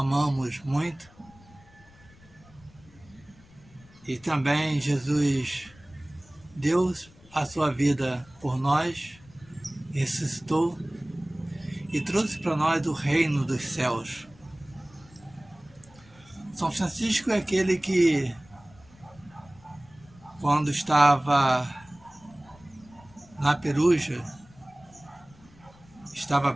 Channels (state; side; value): noise; left; rumble, 26 dB below the sound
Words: muito. E também Jesus deu a sua vida por nós, ressuscitou e trouxe para nós o reino dos céus. São Francisco é aquele que, quando estava na Peruja, estava